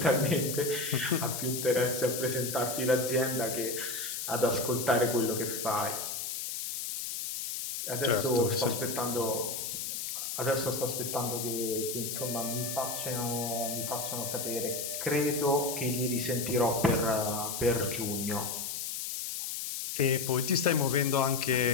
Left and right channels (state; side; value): noise; left; hiss, 4 dB below the sound